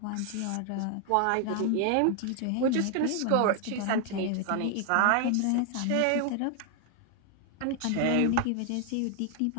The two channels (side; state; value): both; different; correlation 0.00